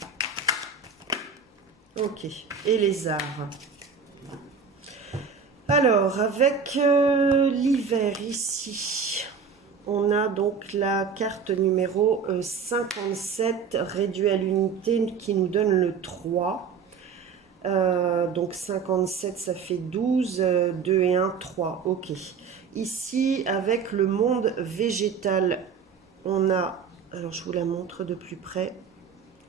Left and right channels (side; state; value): left; quieter; 5.9 dB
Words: Ok, et les arts. Alors, avec l'hiver ici, on a donc la carte numéro 57, réduit à l'unité, qui nous donne le 3. Donc 57, ça fait 12, 2 et 1, 3. Ok. Ici, avec le monde végétal, on a Alors, je vous la montre de plus près.